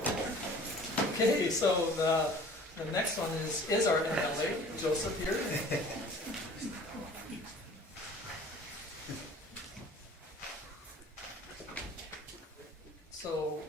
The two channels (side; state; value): both; normal; correlation 0.47